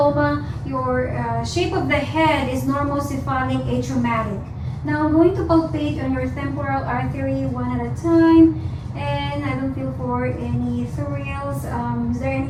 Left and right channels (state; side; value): identical; both; correlation 1.00